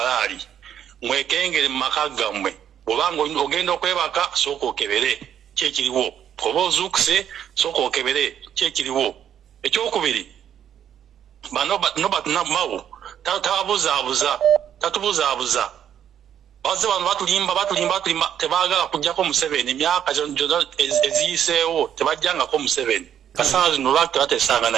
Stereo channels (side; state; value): left; quieter; 9.6 dB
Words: mwekengere mu maka gammwe bw'obanga ogenda okwebaka sooka okebere kyekiriwo oba ozuukuse sooka okebere kyekiriwo ekyokubiri bano mawu tatubuzaabuza baze bano batulimba tebaagala kujjako Museveni emyaka gyonna eziyiseewo tebajjangako Museveni kasana zino lwaki tebateesanga